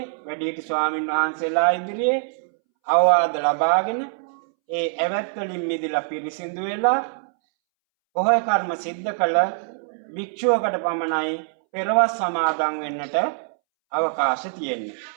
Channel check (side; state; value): left; silent; 63 dB below the other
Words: වැඩිහිටි ස්වාමින් වහන්සේලා ඉදිරියේ අවවාද ලබාගෙන ඒ ඇවැත් වලින් මිදලා පිරිසිදු වෙලා පොහොය කර්ම සිද්ධ කළ භික්ෂුවකට පමණයි පෙරවස් සමාදන් වෙන්නට අවකාශ තියෙන්නේ.